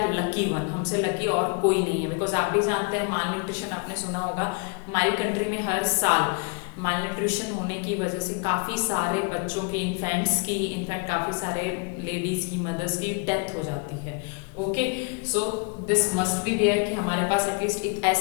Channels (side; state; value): right; quieter; 33.9 dB